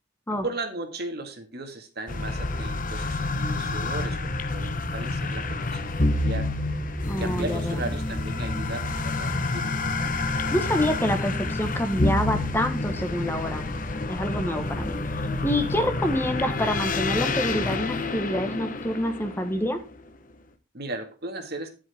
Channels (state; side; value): normal; both; correlation 0.63